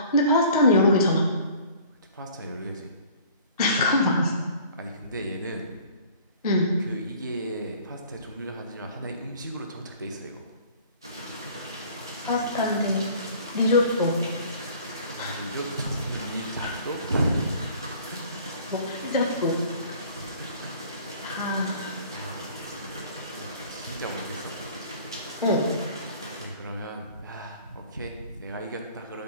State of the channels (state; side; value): inverted; both; correlation -0.50